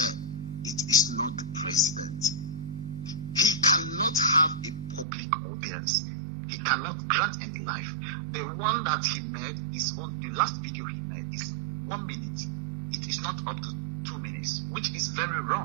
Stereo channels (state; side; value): drops out; left; at 5.1 s